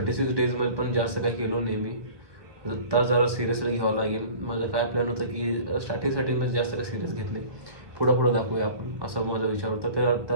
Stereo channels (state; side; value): late; left; 1.2 ms